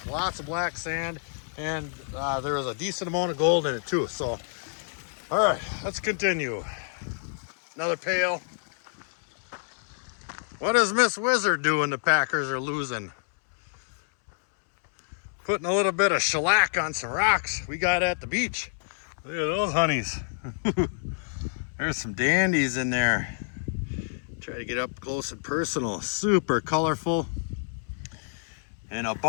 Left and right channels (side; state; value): right; silent; 59 dB below the other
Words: Lots of black sand, and there was a decent amount of gold in it too. So, all right, let's continue. Another pail. What does Miss Wizard do when the Packers are losing? Putting a little bit of shellac on some rocks we got at the beach. Look at those honeys. There's some dandies in there. Try to get up close and personal. Super colorful and